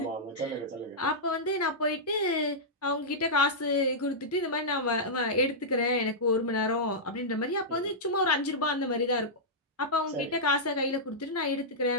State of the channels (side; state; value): both; normal; correlation -0.11